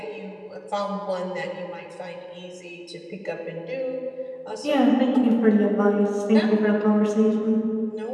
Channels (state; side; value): identical; both; correlation 1.00